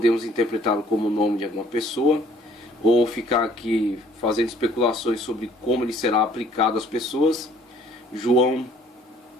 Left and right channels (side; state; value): both; normal; correlation 0.58